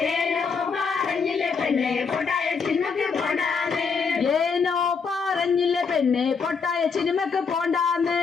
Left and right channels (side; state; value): right; quieter; 5.4 dB